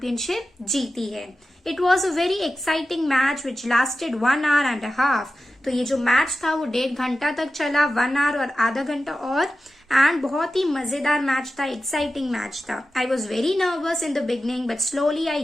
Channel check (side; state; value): both; normal; correlation 0.93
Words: जीती है। It was a very exciting match which lasted 1 hour and a half। तो ये जो match था वो 1.5 घंटा तक चला, 1 hour और आधा घंटा और, एंड बहुत ही मजेदार मैच था, एक्साइटिंग मैच था। I was very nervous in the beginning but slowly I